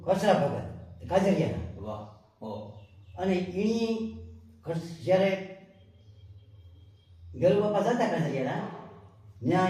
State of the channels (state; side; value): identical; both; correlation 1.00